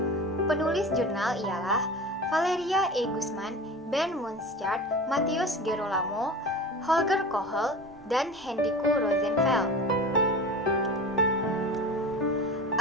Penulis jurnal ialah Valeria E. Guzman, Ben Munstert, Matthias Gerolamo, Holger Kohl, dan Henrico Rosenfeld.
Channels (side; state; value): both; normal; correlation 0.34